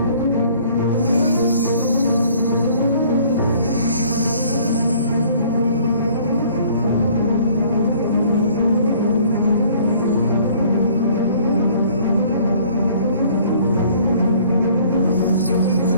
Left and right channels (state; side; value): inverted; both; correlation -0.56